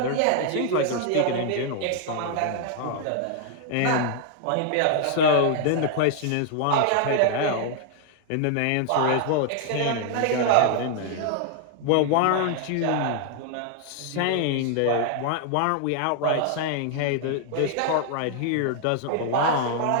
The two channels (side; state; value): both; different; correlation 0.00